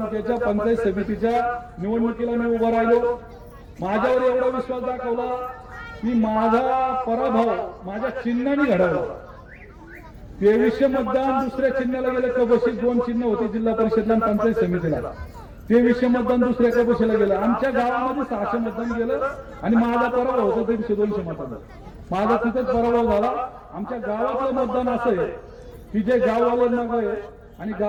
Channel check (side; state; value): both; identical; correlation 1.00